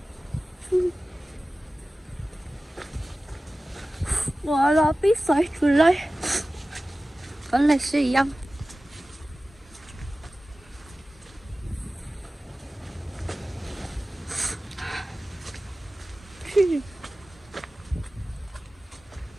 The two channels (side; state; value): both; normal; correlation 0.96